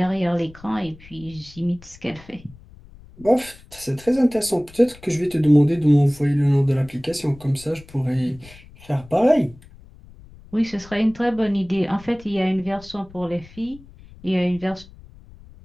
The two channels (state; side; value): noise; left; rumble, 21 dB below the sound